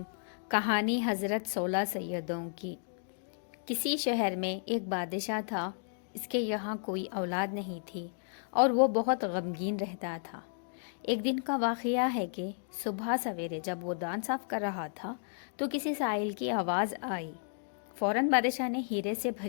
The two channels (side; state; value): right; silent; digital silence